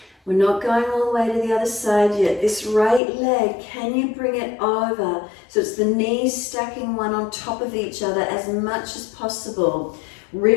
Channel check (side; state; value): right; drops out; at 3.0 s